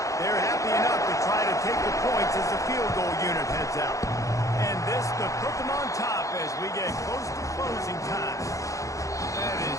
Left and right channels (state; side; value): late; right; 0.16 ms